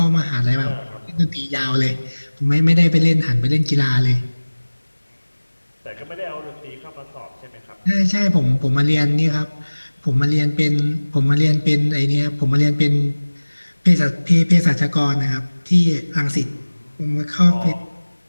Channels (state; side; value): inverted; both; correlation -1.00